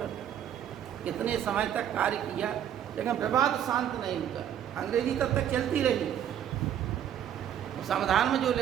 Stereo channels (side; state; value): left; quieter; 10.0 dB